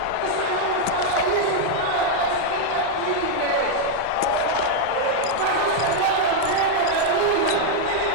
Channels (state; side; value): different; both; correlation 0.00